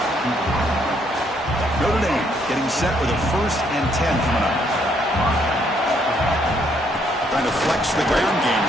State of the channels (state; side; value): normal; both; correlation 0.70